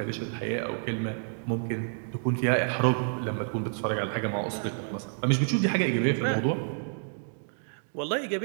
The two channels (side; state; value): left; silent; digital silence